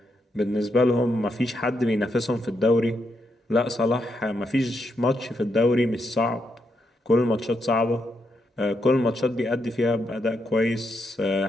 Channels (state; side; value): normal; both; correlation 0.81